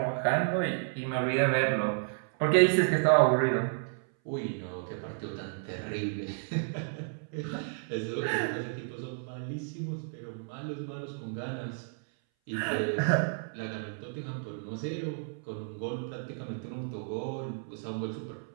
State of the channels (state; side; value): silent; left; 57 dB below the other